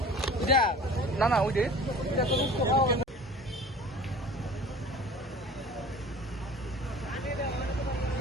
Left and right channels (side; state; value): both; normal; correlation 0.43